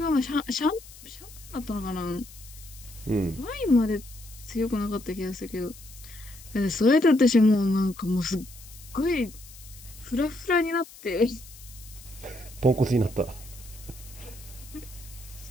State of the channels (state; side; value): noise; left; hiss, 19 dB below the sound